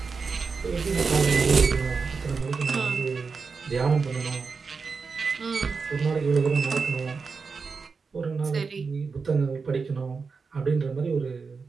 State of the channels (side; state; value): left; quieter; 4.9 dB